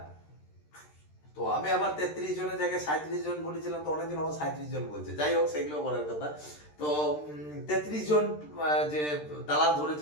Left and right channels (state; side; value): late; right; 13 ms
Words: তো আমি আবার 33 জনের জায়গায় 37 জন বলেছিলাম, তো অনেকজন আবার 37 জন বলছে। যাই হোক, সেগুলো বলার কথা। তো 33 জন যে দালাল